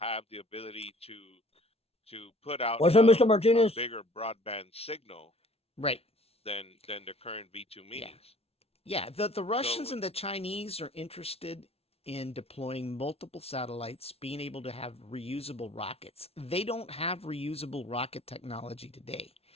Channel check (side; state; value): right; late; 0.29 ms